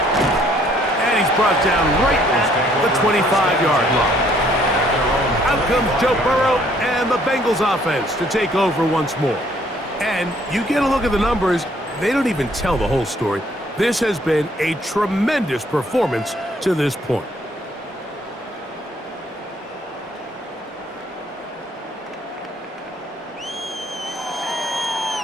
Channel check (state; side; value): normal; both; correlation 0.64